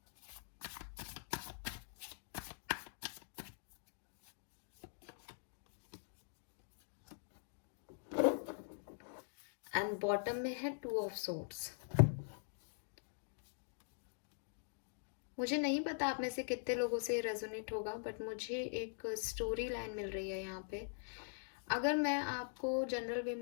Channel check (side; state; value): right; silent; digital silence